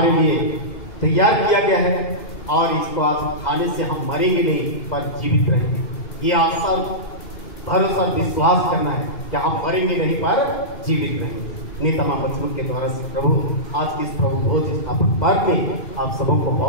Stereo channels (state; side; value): late; right; 2.5 ms